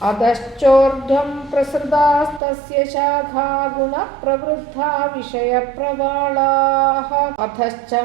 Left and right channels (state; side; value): drops out; left; at 2.4 s